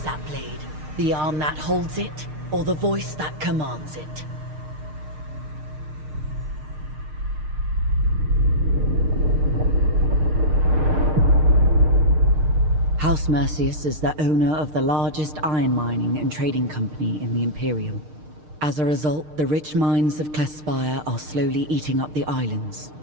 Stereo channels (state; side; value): late; left; 6.6 ms